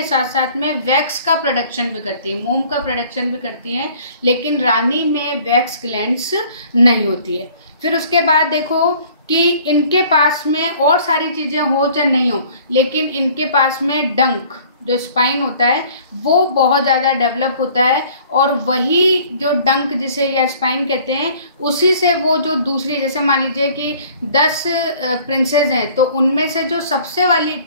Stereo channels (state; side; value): inverted; both; correlation -0.53